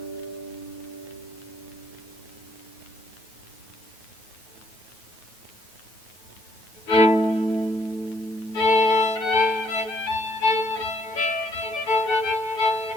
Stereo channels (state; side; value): late; right; 9.4 ms